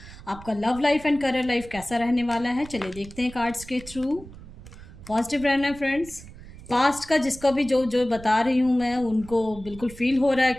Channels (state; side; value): noise; right; rumble, 17 dB below the sound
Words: आपका love life and career life कैसा रहने वाला है, चलिए देखते हैं कार्ड्स के थ्रू। पॉजिटिव रहना है फ्रेंड्स। पास्ट का जिसको भी जो जो बता रही हूँ मैं, उनको बिल्कुल फील हो रहा है